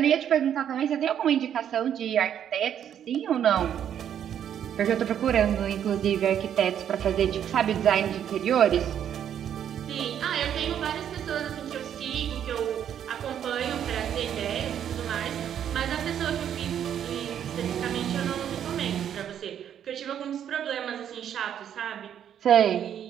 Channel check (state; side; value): quieter; left; 9.5 dB